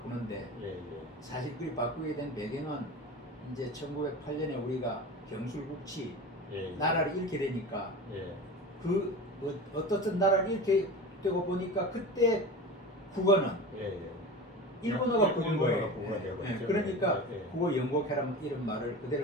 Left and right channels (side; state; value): both; normal; correlation 0.31